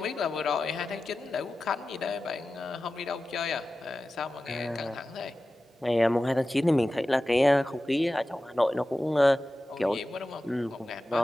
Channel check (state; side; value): normal; both; correlation 0.94